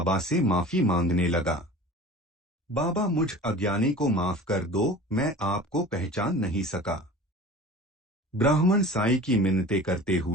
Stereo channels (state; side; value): normal; both; correlation 0.39